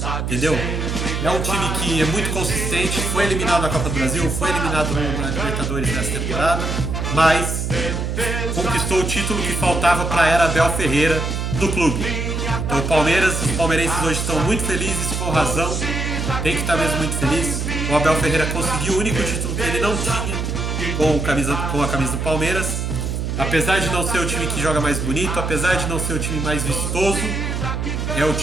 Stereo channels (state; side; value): noise; right; hum, 2 dB below the sound